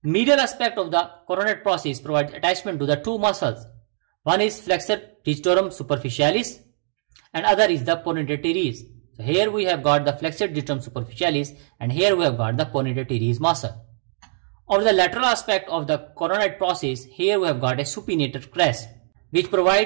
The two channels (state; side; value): silent; left; digital silence